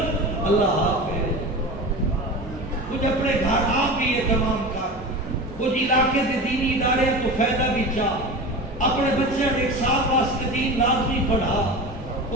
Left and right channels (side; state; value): both; normal; correlation 0.30